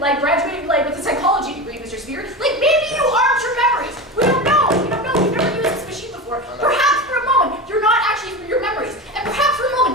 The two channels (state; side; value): normal; both; correlation 0.25